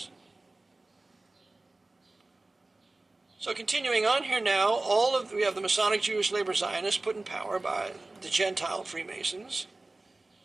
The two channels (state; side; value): quieter; left; 3.0 dB